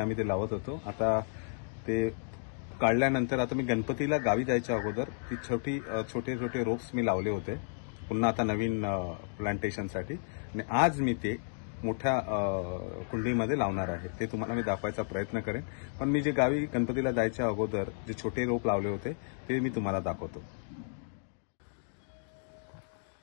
ते लावत होतो। आता ते काढल्यानंतर आता मी गणपतीला गावी जायच्या अगोदर ती छोटे रोप्स मी लावले होते पुन्हा आता नवीन प्लांटेशनसाठी, आणि आज मी ते मोठ्या कुंडीमध्ये लावणार आहे। ते तुम्हाला मी दाखवायचा प्रयत्न करेन, पण मी जे गावी गणपतीला जायच्या अगोदर जे छोटे रोप लावले होते ते मी तुम्हाला दाखवतो।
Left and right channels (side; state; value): right; silent; digital silence